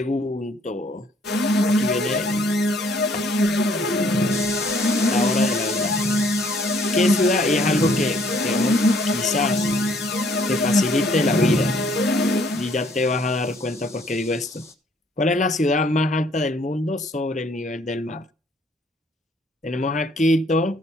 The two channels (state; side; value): normal; both; correlation 0.63